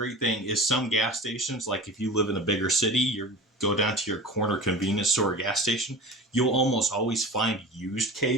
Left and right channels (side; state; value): both; normal; correlation 0.35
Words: thing is some gas stations, like if you live in a bigger city, you go down to your corner convenience store or gas station, you'll almost always find used